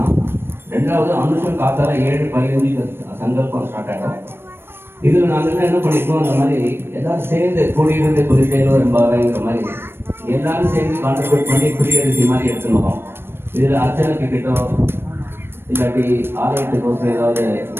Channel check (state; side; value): late; left; 0.11 ms